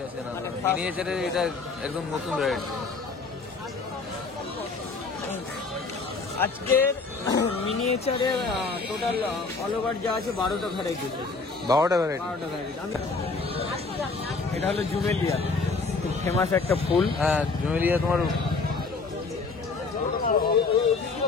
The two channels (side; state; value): right; quieter; 4.2 dB